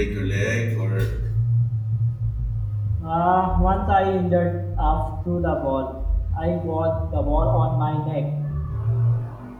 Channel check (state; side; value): identical; both; correlation 1.00